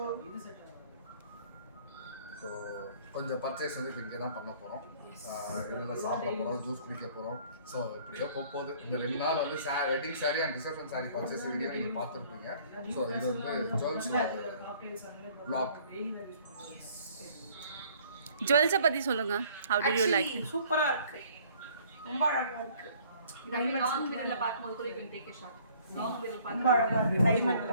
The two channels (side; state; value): both; inverted; correlation -0.57